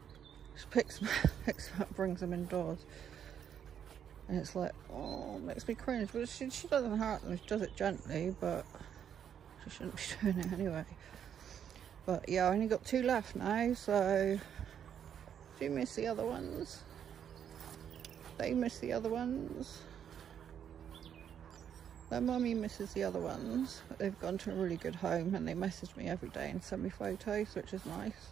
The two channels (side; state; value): left; quieter; 8.8 dB